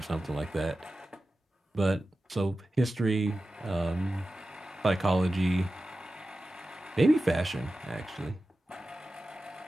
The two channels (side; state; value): both; normal; correlation 0.94